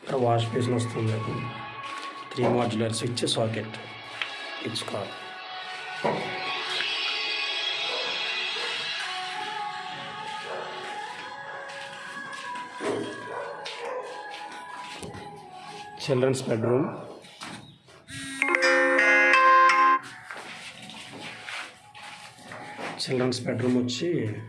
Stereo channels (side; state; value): both; identical; correlation 1.00